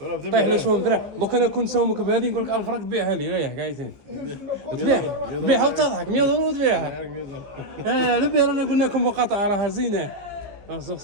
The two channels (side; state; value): left; late; 15 ms